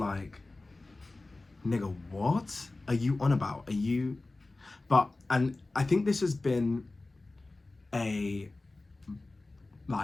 nigga, what are you on about? Are you, but, and I think this has been a,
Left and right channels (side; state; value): right; quieter; 3.1 dB